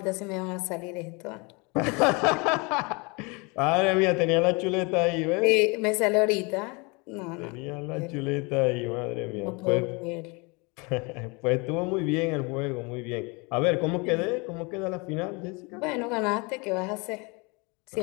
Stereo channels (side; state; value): right; quieter; 29.1 dB